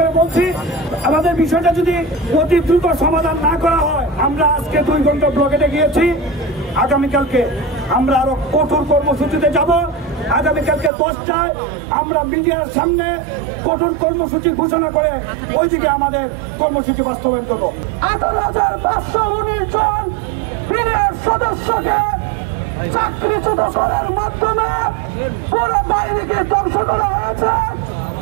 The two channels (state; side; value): drops out; left; at 10.9 s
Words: বলছি আমাদের বিষয়টা যদি অতি দ্রুত সমাধান না করা হয়, আমরা আজকে 2 ঘন্টা ব্লকেটে গিয়েছি, আগামীকালকে আমরা আরো কঠোর কর্মসূচিতে যাব। আগামীকালকে 10টায় আমরা মিডিয়ার সামনে কঠোর কর্মসূচি ঘোষণা করে ওইদিকে আমাদের কর্মসূচি বাস্তবায়ন করবো। 18,519 জন বিডিআর সদস্যকে চাকরিচ্যুত করার মাধ্যমে পুরো বাহিনীকে ধ্বংস করা হয়েছে।